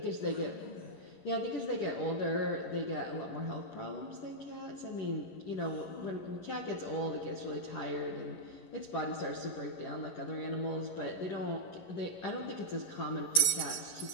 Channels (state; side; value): late; right; 11 ms